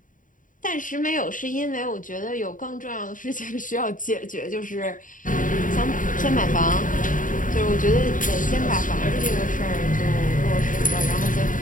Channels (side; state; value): right; late; 0.38 ms